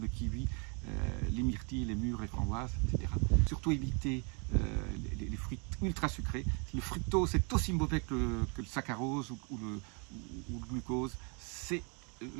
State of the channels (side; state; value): left; quieter; 34.9 dB